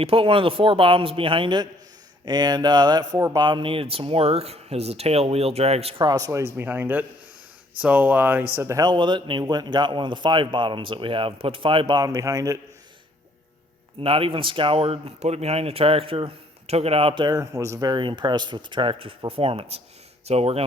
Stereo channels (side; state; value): both; normal; correlation 0.63